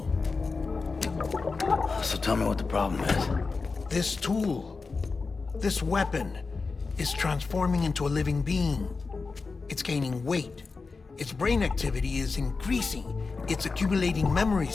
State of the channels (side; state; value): right; quieter; 4.3 dB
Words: So tell me what the problem is. This tool, this weapon, is transforming into a living being. It's gaining weight. Its brain activity is increasing. It's accumulating